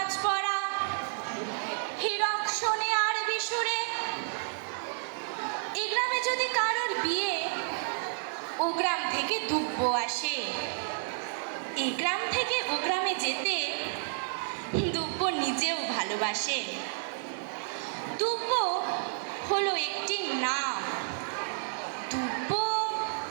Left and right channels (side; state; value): left; silent; digital silence